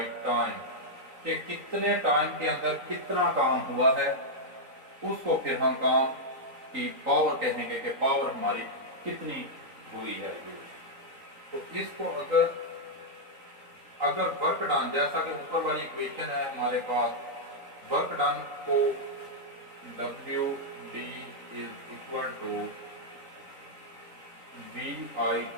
time, कि कितने टाइम के अंदर कितना काम हुआ है, उसको फिर हम काम की पावर कहेंगे कि पावर हमारी कितनी हुई है। तो इसको अगर वर्क डन, जैसा कि ऊपर वाली इक्वेशन है हमारे पास, वर्क डन को W D is equal to V I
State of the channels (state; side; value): late; left; 3.9 ms